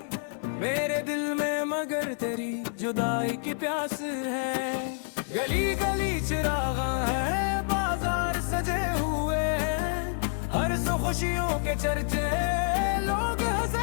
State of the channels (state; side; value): silent; right; 59 dB below the other